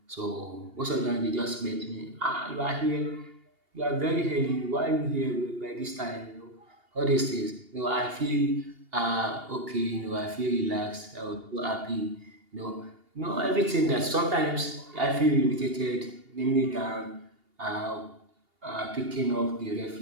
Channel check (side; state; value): left; late; 2.8 ms